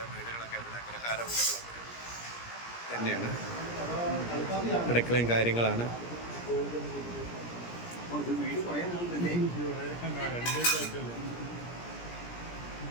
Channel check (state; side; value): late; right; 17 ms